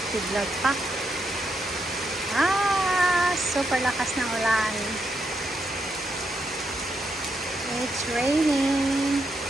pa. Super lakas ng ulan. It's raining.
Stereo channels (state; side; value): normal; both; correlation 0.81